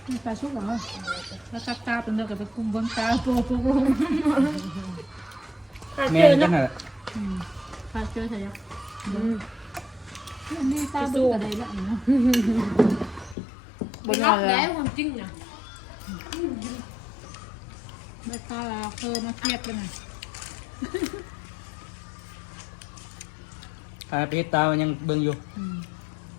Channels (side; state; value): right; drops out; at 13.4 s